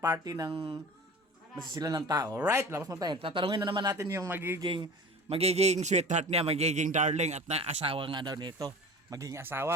ng masisila ng tao. Alright? Labas na tayo. Tatanungin na naman natin yung magiging sweetheart niya, magiging darling at na asawa nga daw nito. Magiging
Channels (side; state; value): both; normal; correlation 0.38